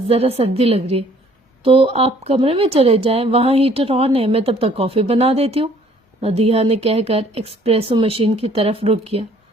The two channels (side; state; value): both; normal; correlation 0.59